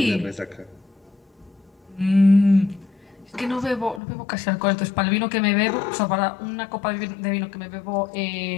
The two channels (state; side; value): drops out; right; at 4.0 s